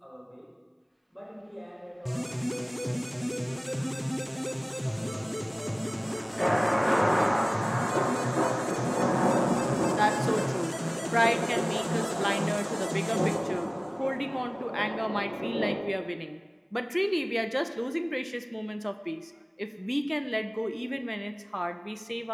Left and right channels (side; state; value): both; identical; correlation 1.00